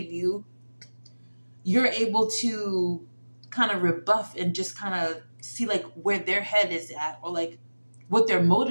you, you're able to kind of rebuff and just kind of see like where their head is at, or like what their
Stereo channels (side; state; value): both; inverted; correlation -1.00